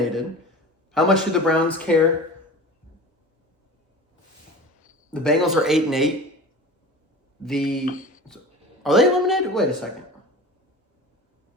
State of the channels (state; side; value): normal; both; correlation 0.35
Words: How much do the Browns care? The Bengals are 8-8. Are they eliminated? Wait a second.